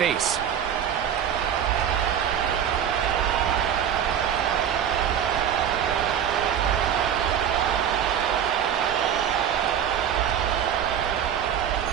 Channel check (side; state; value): left; quieter; 9.0 dB